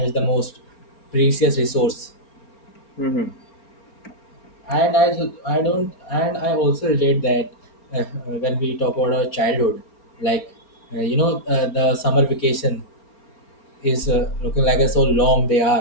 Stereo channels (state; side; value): late; right; 4.4 ms